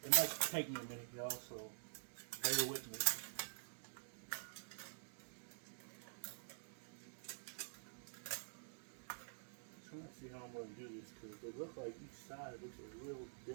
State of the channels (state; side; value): silent; left; digital silence